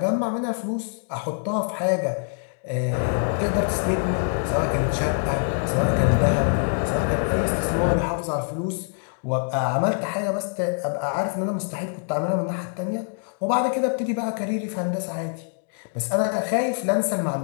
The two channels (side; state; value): right; silent; 61 dB below the other